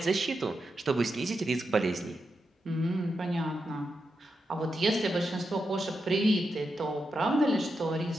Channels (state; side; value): normal; both; correlation 0.87